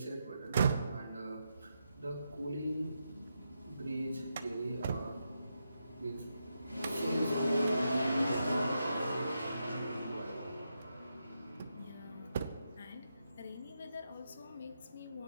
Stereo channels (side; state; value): both; inverted; correlation -0.84